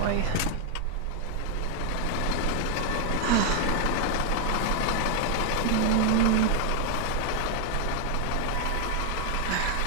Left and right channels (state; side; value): different; both; correlation 0.00